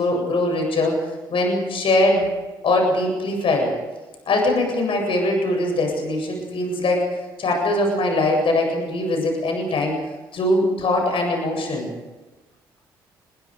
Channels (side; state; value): both; normal; correlation 0.58